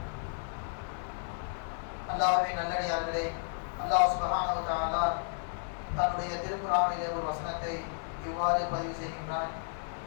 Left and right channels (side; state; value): right; silent; digital silence